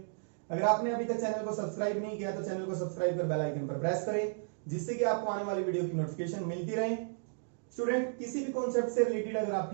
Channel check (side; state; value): left; silent; digital silence